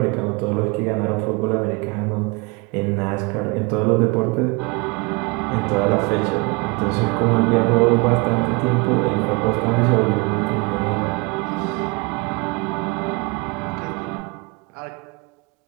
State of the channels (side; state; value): left; quieter; 28.0 dB